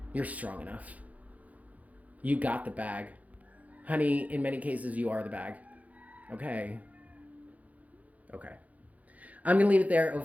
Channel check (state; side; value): late; left; 0.072 ms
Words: You're strong enough. You got the bag. Honey, in many cases, you are the bag. Okay. Okay. I'm going to leave it there,